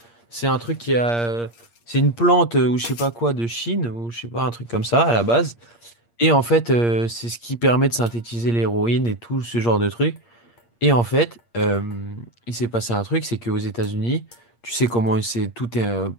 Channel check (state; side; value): late; right; 8.6 ms